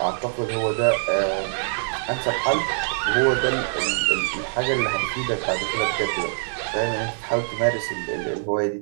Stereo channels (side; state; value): left; silent; digital silence